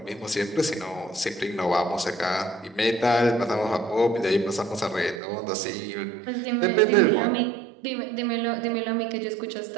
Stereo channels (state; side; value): drops out; left; at 5.2 s